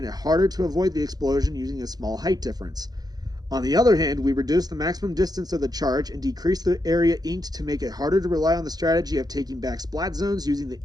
it harder to avoid the explosion using a small height difference. On the other hand, we reduced the maximum distance of the charge and decreased the area inked to make it harder to rely on the strategy of taking back splat zones using the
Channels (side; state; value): left; late; 0.19 ms